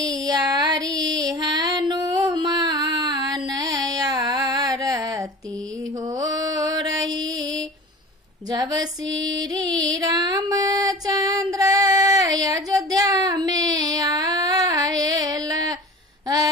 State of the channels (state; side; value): normal; both; correlation 0.38